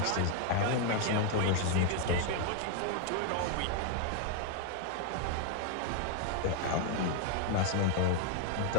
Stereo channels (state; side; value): different; both; correlation 0.00